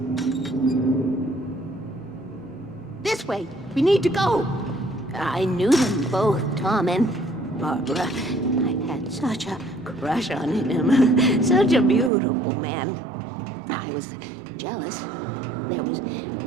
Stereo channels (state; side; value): drops out; left; at 12.1 s